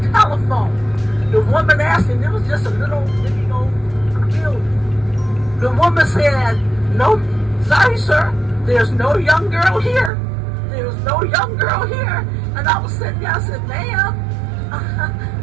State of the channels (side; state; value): left; drops out; at 10.1 s